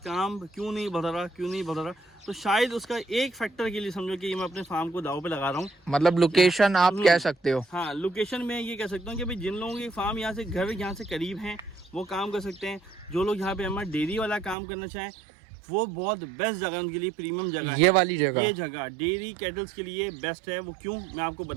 क्यों नहीं बढ़ रहा, तो शायद उसका एक फैक्टर के लिए समझो कि मैं अपने फार्म को दाव पे लगा रहा हूँ। मतलब लोकेशन आप कह सकते हो? हाँ, लोकेशन में ये कह सकता हूँ कि भाई जिन लोगों के फार्म यहाँ से घर यहाँ से करीब हैं वो काम कर सकते हैं। जो लोग यहाँ पे हमारा डेयरी वाला काम करना चाहें वो बहुत बेस्ट जगह उनके लिए, प्रीमियम जगह है। ये वाली जगह, ये जगह डेयरी कैटल्स के लिए बेस्ट है। वो क्यों, मैं आपको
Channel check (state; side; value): drops out; left; at 14.6 s